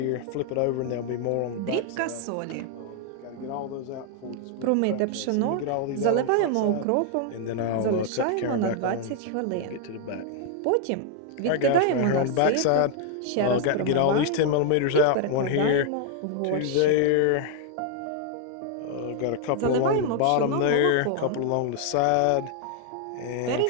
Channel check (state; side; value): different; both; correlation 0.00